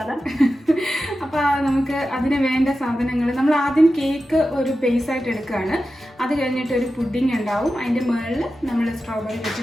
അപ്പോൾ നമുക്ക് അതിന് വേണ്ട സാധനങ്ങൾ നമ്മൾ ആദ്യം കേക്ക് ഒരു ബേസായിട്ട് എടുക്കുകയാണ്. അത് കഴിഞ്ഞിട്ട് ഒരു പുഡിംഗ് ഉണ്ടാവും. അതിൻ്റെ മുകളിൽ നമ്മൾ സ്ട്രോബെറി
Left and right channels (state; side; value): normal; both; correlation 0.92